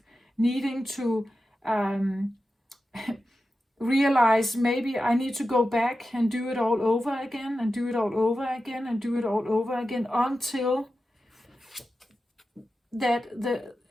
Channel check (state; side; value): normal; both; correlation 0.92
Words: needing to realize maybe I need to go back and do it all over again, and do it all over again, and do it all over again, until that